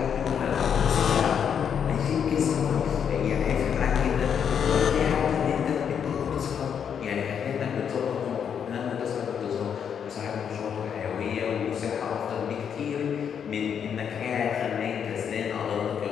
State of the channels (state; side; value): quieter; right; 7.8 dB